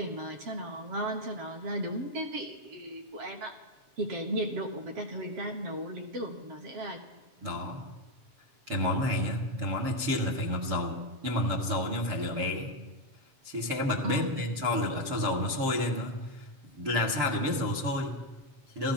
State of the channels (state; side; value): late; left; 7.3 ms